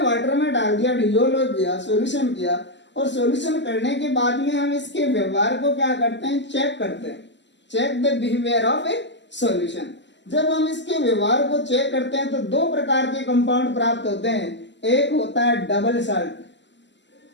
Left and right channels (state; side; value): late; right; 0.52 ms